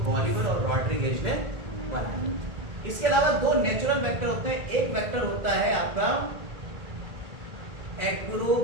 बॉलिवर और रॉड्रिगेज ने बनाया। इसके अलावा 2 नेचुरल वेक्टर होते हैं। एक वेक्टर होता है आपका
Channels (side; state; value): left; late; 1.8 ms